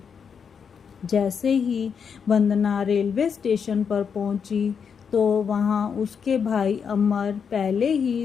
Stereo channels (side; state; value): right; quieter; 6.7 dB